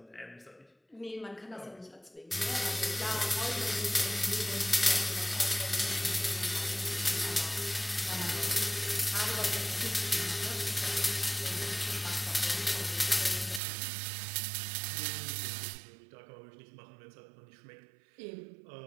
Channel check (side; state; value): left; drops out; at 13.6 s